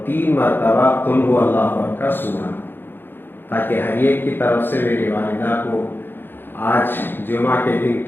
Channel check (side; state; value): right; late; 0.099 ms